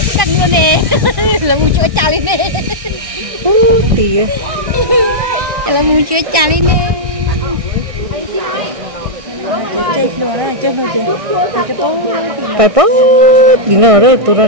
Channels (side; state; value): left; late; 1.6 ms